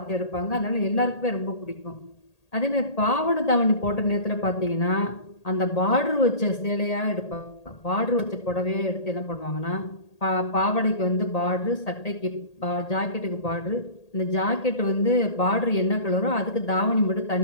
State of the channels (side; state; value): right; late; 1.8 ms